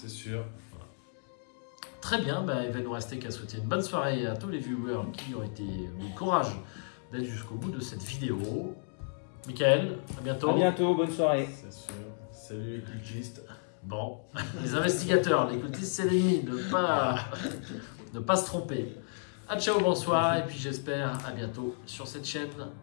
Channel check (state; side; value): silent; right; digital silence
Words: sûr. Très bien, bah, il va nous rester qu'à souhaiter une bonne soirée à tous les viewers qui ont été du courage d'être jusqu'au bout de cette vidéo. Michael, à bientôt. À bientôt, bonne soirée. C'est sûr. Salut les cultistes. Bon, les investigateurs, les cultistes, c'est l'ennemi, ne pas se tromper. À ciao, bonsoir, et puis j'espère à bientôt sur cette chaîne.